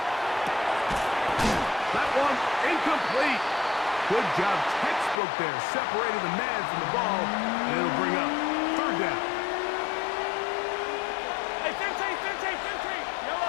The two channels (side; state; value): right; drops out; at 5.2 s